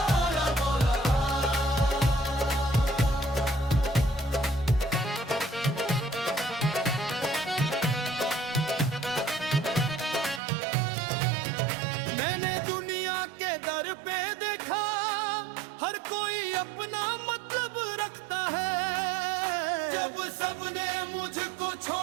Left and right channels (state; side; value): drops out; left; at 10.4 s